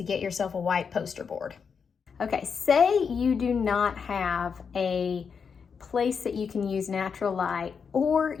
get yourself a white poster board. Okay, say you do not have a place that you can use natural light, or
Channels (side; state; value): right; quieter; 6.1 dB